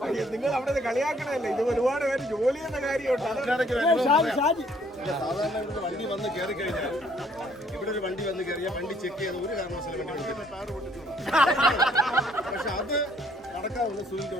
നിങ്ങൾ അവിടെ കളിയാക്കണല്ലേ, ഇത് ഒരുപാട് പേര് ജോലി ചെയ്യുന്ന കാര്യമുണ്ട്. സാധാരണ ഇവിടെ വണ്ടി വന്ന് കയറി കഴിഞ്ഞാൽ ഇവിടെ ഒരു വണ്ടി വന്ന് കയറിയാൽ വണ്ടി ചെക്ക് ചെയ്യാൻ ഒരു കാരണവശാലും വണ്ടി പക്ഷെ അത് നടക്കാവുന്ന സുനിൽ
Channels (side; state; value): both; normal; correlation 0.63